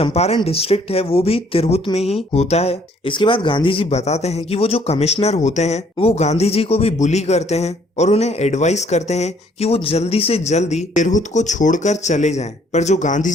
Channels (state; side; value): normal; both; correlation 0.63